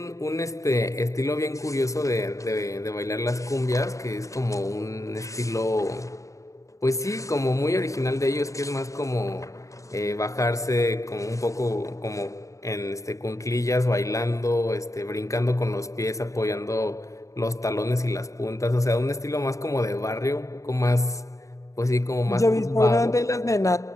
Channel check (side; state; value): right; late; 0.15 ms